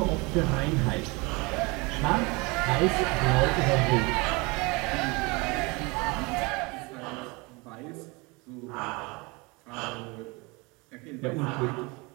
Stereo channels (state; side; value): quieter; left; 26.8 dB